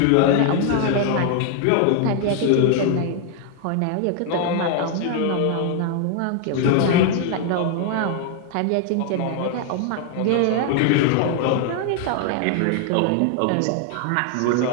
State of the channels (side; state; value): both; different; correlation 0.00